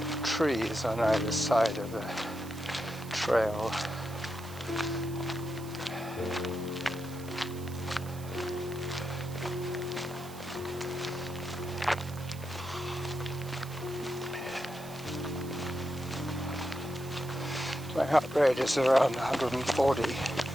trees on either side of the trail. My heart rate is around 140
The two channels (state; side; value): noise; right; hiss, 17 dB below the sound